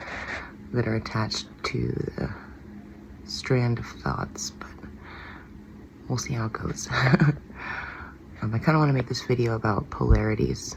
that are attached to the strand of thoughts. But we'll see how it goes. I kind of want to make this video about polarities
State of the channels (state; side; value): identical; both; correlation 1.00